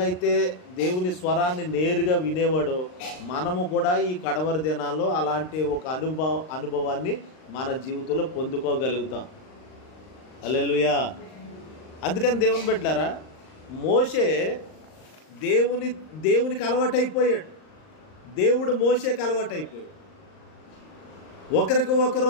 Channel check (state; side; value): late; right; 39 ms